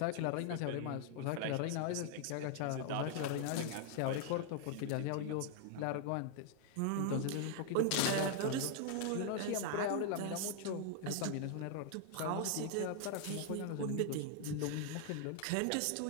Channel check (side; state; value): both; different; correlation 0.00